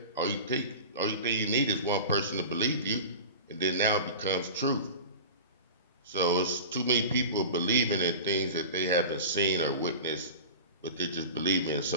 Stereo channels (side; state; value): both; inverted; correlation -0.33